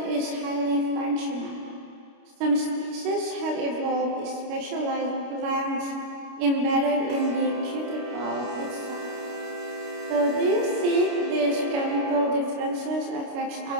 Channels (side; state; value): left; late; 29 ms